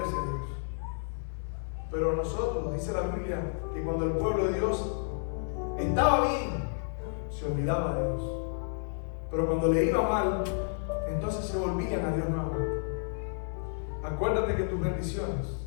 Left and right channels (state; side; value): silent; right; digital silence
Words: a Dios. Pero nosotros, dice la Biblia, que cuando el pueblo de Dios estaba bien, se olvidaba de Dios, pero cuando le iba mal, entonces se volvían a Dios nuevamente. Acuérdate que tus bendiciones